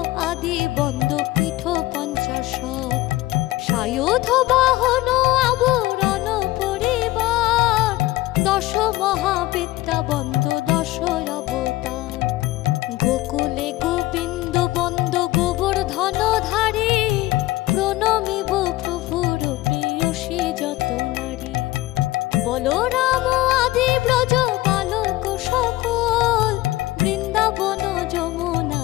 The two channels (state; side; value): quieter; right; 17.6 dB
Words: আদি বন্দ পীঠ পঞ্চাশত। সায়ুধ বাহন আবরণ পরিবার, দশ মহাবিদ্যা বন্দ দশ অবতার। গোকুলে গোবিন্দ বন্দ গোবর্ধনধারী, প্রণমিব প্রভুর প্রেয়সী যত নারী। বলরাম আদি ব্রজ বালক সকল, বৃন্দাবন